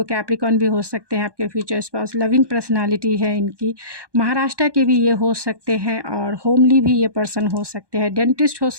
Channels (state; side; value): late; left; 1.2 ms